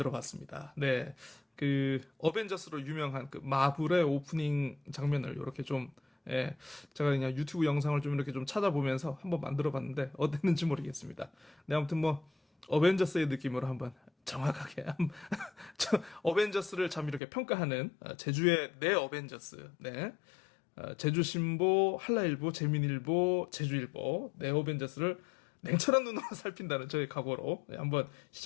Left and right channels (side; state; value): right; drops out; at 17.2 s